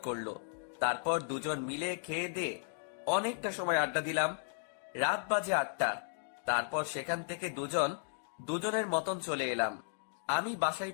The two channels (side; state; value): right; silent; digital silence